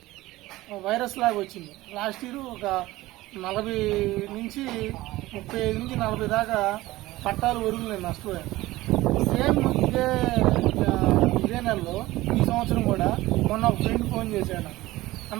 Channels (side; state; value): left; quieter; 17.9 dB